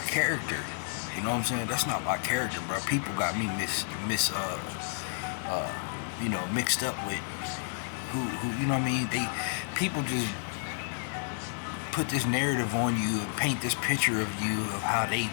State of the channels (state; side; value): silent; right; 57 dB below the other